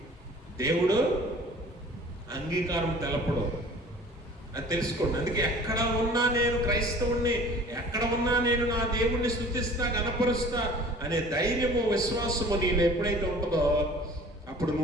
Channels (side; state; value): both; normal; correlation 0.47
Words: దేవుడు అంగీకారం తెలపడు. అది తెలుసుకోండి. అందుకే ఎక్కడ ఉన్నా నేను క్రైస్తవుణ్ణి, ఎక్కడ ఉన్నా నేను నా దేవుణ్ణి స్తుతిస్తా, గణపరుస్తా అనే ధైర్యము, విశ్వాసము నీలో ఎప్పుడైతే ఉంటుందో అప్పుడు